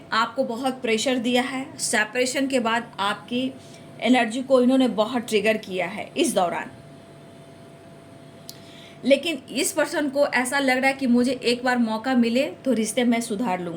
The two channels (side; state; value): both; identical; correlation 1.00